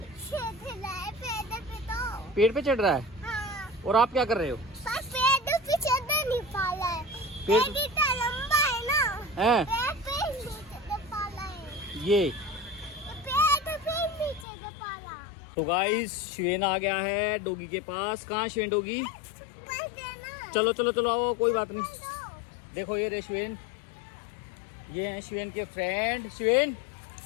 पेड़ पे चढ़ रहा है। हाँ। और आप क्या कर रहे हो? पेड़ लंबा है ना है ये। तो गाइस शिवेन आ गया है डॉगी के पास। कहाँ शिवेन? डॉगी चलो चलो चलो आओ, कोई बात नहीं। देखो ये रे शिवेन, ये हैं शिवेन के फ्रेंड। शिवेन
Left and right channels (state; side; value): drops out; right; at 14.5 s